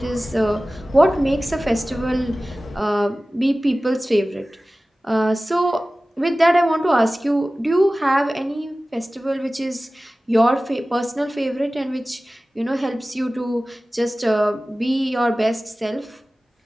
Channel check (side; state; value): both; normal; correlation 0.97